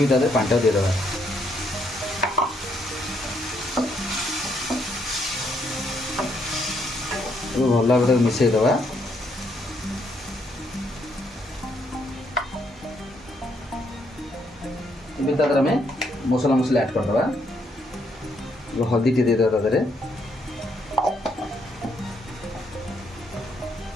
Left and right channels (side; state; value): both; normal; correlation 0.73